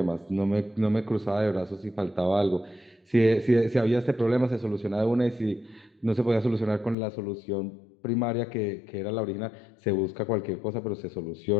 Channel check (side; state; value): right; drops out; at 7.0 s